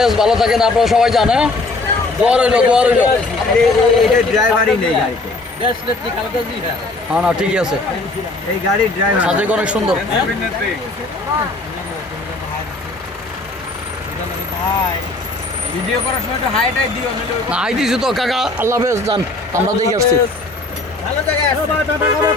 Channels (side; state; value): right; quieter; 3.0 dB